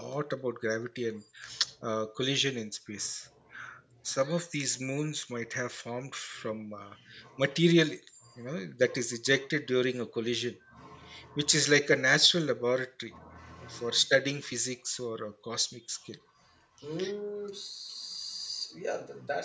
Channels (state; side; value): identical; both; correlation 1.00